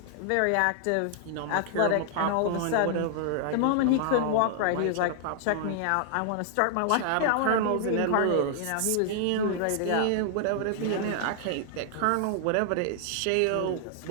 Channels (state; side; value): different; both; correlation -0.01